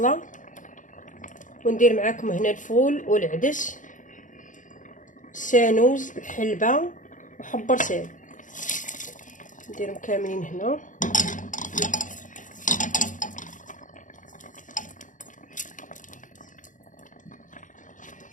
وندير معكم هنا الفول والعدس، السانوز، الحلبه وحب رسال. نديرهم كاملين هنا.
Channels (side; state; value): right; late; 0.37 ms